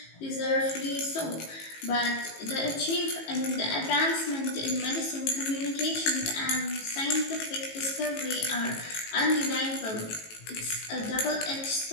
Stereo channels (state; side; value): late; right; 18 ms